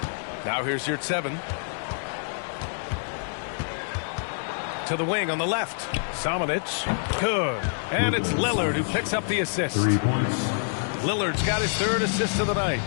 Now here's Yurtseven. To the wing on the left. Samanic. Good. And it's Lillard who picks up the assist. 3 points. Lillard's got his 3rd assist of the night.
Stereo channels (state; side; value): silent; right; digital silence